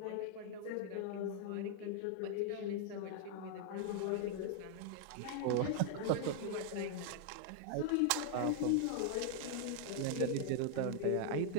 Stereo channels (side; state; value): both; different; correlation 0.00